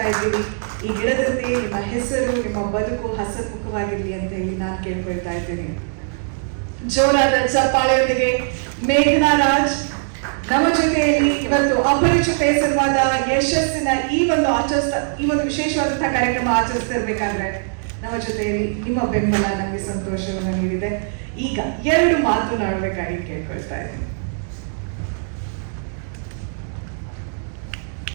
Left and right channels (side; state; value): left; silent; digital silence